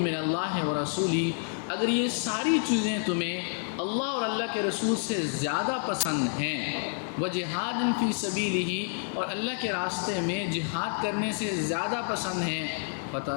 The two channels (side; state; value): right; silent; 59 dB below the other